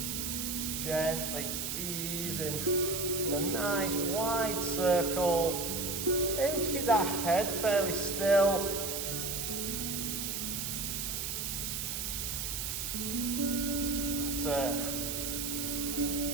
Just gently easing in a nice wide circle. Aim to keep that head fairly still. That's it.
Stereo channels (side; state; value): right; noise; hiss, 3 dB below the sound